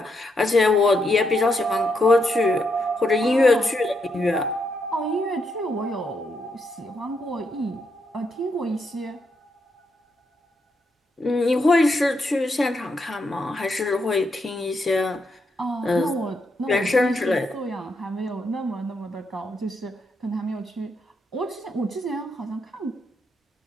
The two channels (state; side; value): normal; both; correlation 0.79